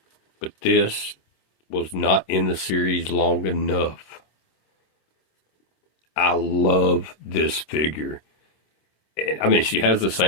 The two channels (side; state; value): right; late; 26 ms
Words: But this was not in the series long enough. I love this figure. I mean, she has the